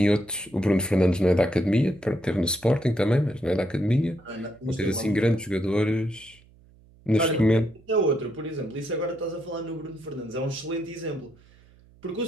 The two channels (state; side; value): noise; right; hum, 27 dB below the sound